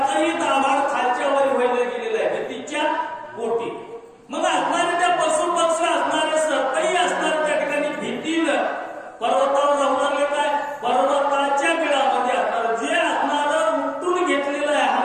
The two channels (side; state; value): both; identical; correlation 1.00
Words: दाभाड खालच्या वर व्हायला गेलेलं आहे भीतीच्या पोटी मग असणारे त्या पशु पक्षी असणारे सर्पही असणारे त्या ठिकाणी भीतीनं पर्वतावर जाऊ लागले काय पर्वताच्या बिळामध्ये असणार जे असणार उठून घेतलेलं आहे